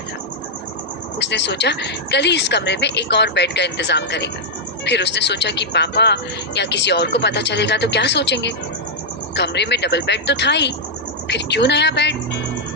था। उसने सोचा कल ही इस कमरे में एक और बेड का इंतजाम करेगा। फिर उसने सोचा कि पापा या किसी और को पता चलेगा तो क्या सोचेंगे। कमरे में डबल बेड तो था ही, फिर क्यों नया बेड?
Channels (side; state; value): both; normal; correlation -0.05